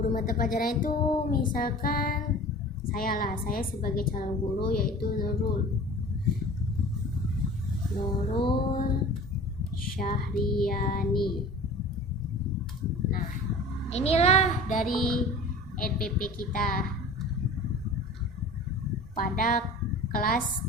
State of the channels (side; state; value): both; normal; correlation 0.41